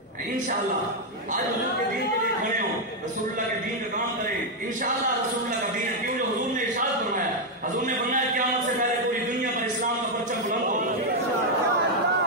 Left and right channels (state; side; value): normal; both; correlation 0.01